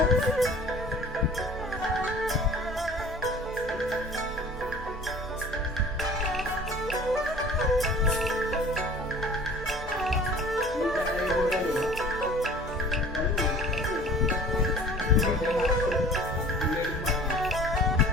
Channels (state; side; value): normal; both; correlation 0.46